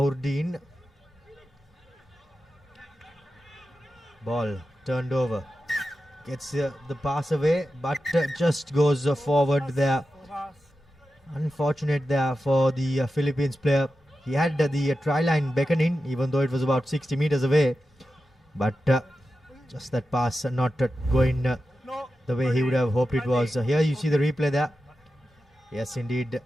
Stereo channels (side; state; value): both; normal; correlation 0.91